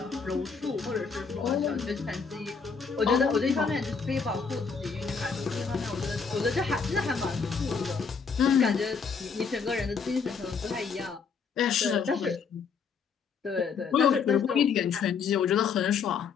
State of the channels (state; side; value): quieter; right; 5.7 dB